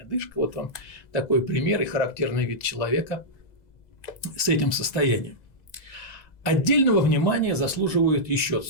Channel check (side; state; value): right; late; 2.0 ms